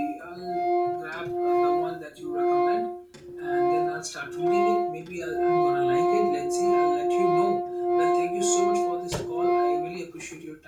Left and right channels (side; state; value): both; identical; correlation 1.00